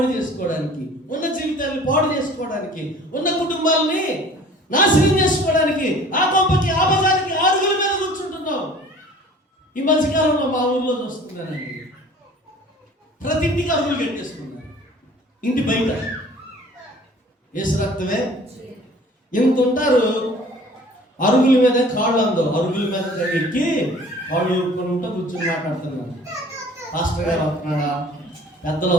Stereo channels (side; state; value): both; normal; correlation 0.49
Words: చేసుకోవడానికి, ఉన్న జీవితాన్ని పాడు చేసుకోవడానికి, ఉన్న కుటుంబాలని నాశనం చేసుకోవడానికి, ఆ గొప్పకి ఆ బజార్కి అరుగుల మీద కూర్చుంటున్నావు. ఈ మధ్యకాలంలో మా ఊర్లో చూస్తున్నానండి, ప్రతి ఇంటికి అరుగులు కట్టేసుకున్నారు. ఇంటి బయట ఏసు రక్తమే ఎంత ఉంటారు. అరుగుల మీద కాళ్ళు అందో, అరుగుల మీద ఎక్కి వాళ్ళు కొనుంటూ కూర్చొని మాట్లాడుతున్నారు. పాస్టర్ గారు వస్తున్నారా, పెద్దలు